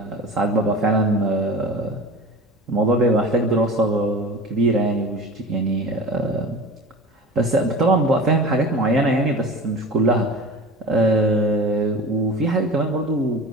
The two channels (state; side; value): normal; both; correlation 0.35